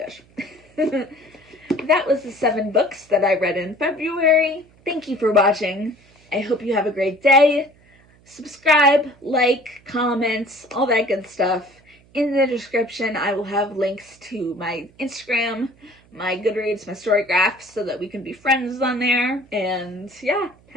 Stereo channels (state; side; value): noise; right; hum, 29 dB below the sound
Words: That was the 7 books that I read in February. Thank you for watching. I hope you have a great day. Subscribe, like, comment, all that good stuff. In the description, I will have links to my Instagram, my Goodreads, my Storygraph, so that we can be friends on there. And yeah,